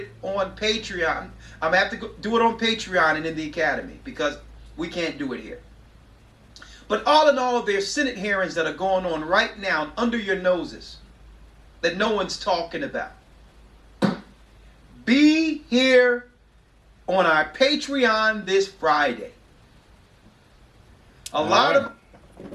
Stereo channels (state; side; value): identical; both; correlation 1.00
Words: on Patreon. I'm going to have to do it on Patreon and in the Academy because we can't do it here. But all in all, there's Senate hearings that are going on right now under your noses that no one's talking about. Be here on our Patreon this Friday. All